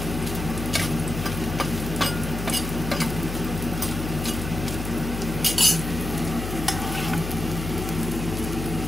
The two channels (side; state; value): left; noise; hum, 5 dB below the sound